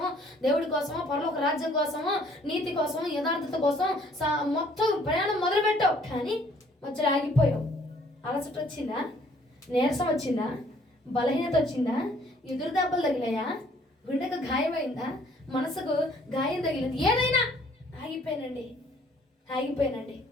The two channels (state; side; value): normal; both; correlation 0.60